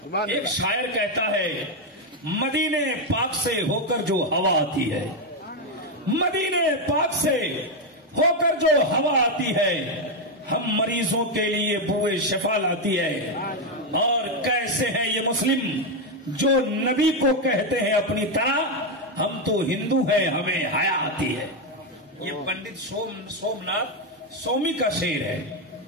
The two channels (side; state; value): both; normal; correlation 0.04